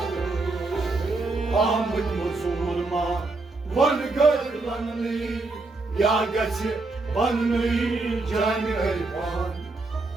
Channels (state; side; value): quieter; left; 3.4 dB